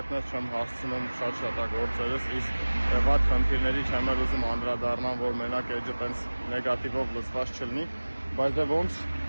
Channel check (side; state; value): both; inverted; correlation -1.00